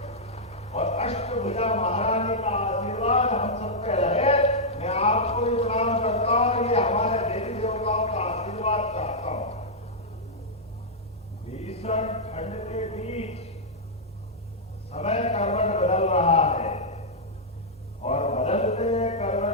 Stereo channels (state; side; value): normal; both; correlation -0.07